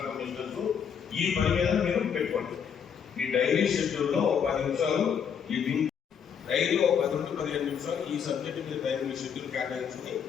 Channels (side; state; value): right; quieter; 7.5 dB